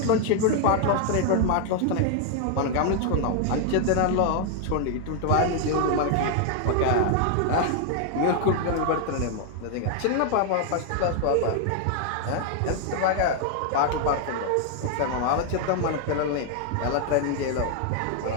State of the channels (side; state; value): both; different; correlation 0.00